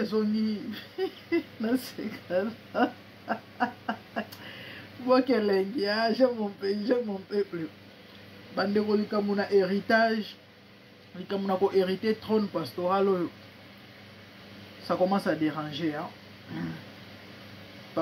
zongi na seka bokelengi j'aime mon peuple bande ko likamuna héritage likamuna ko hériter trône pastoral ça commence à déranger hein.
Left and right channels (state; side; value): identical; both; correlation 1.00